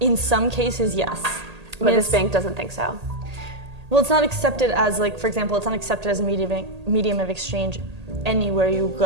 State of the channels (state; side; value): late; left; 1.8 ms